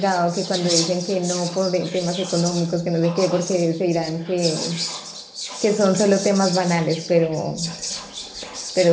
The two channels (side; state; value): both; identical; correlation 1.00